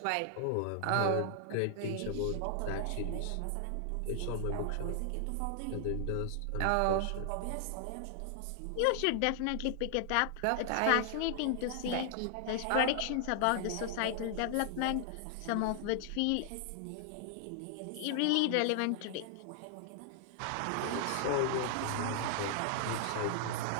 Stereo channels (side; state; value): both; different; correlation 0.00